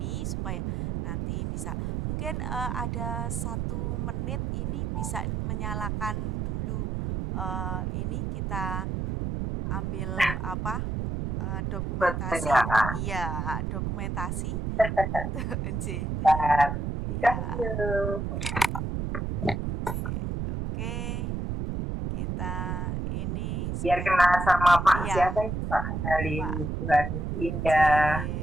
supaya nanti bisa mungkin ada 1 menit ini bisa menyalakan dulu ini kita ambil dokumentasi. Pertanyaan. Iya, dokumentasi untuk Bentar. Ya. Oke, kita ini Biar kena sama Pak Iya. siapa yang Pak Andali, Pak Tuhan Indah,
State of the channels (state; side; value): noise; right; rumble, 2 dB below the sound